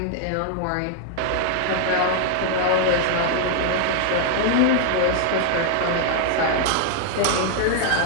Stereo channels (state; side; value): different; both; correlation 0.00